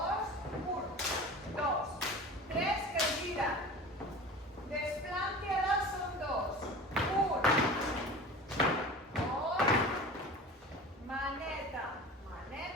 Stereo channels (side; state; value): both; normal; correlation 0.36